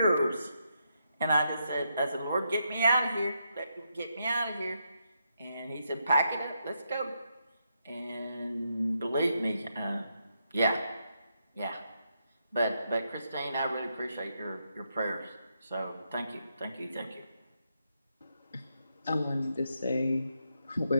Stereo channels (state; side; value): inverted; both; correlation -0.81